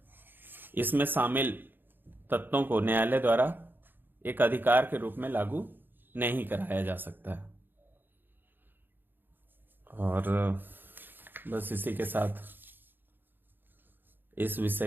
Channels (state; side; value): late; left; 0.095 ms